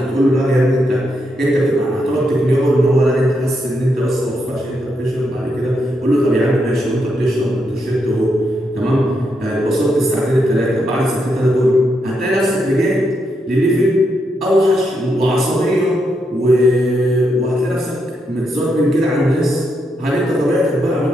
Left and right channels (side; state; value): both; normal; correlation 0.81